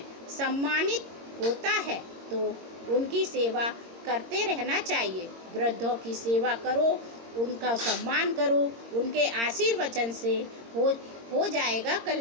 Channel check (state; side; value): late; left; 22 ms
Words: सम्मानित होता है तो उनकी सेवा करते रहना चाहिए। वृद्धों की सेवा करो, उनका सम्मान करो, उनके आशीर्वचन से हो जाएगा